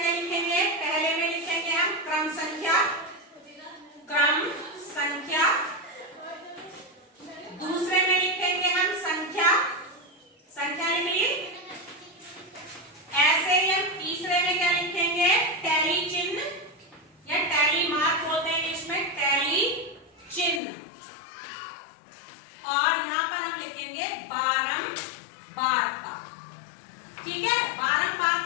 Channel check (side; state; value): right; drops out; at 20.6 s